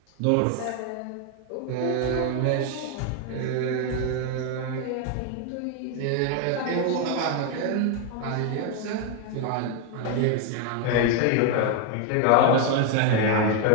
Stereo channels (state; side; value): different; both; correlation 0.01